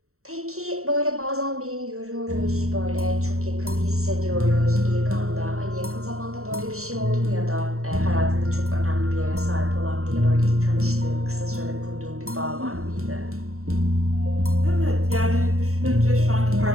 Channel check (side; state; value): left; late; 0.63 ms